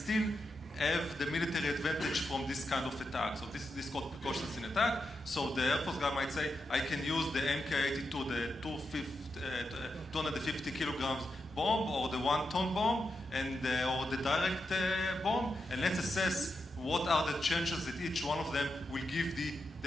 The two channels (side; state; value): both; normal; correlation 0.86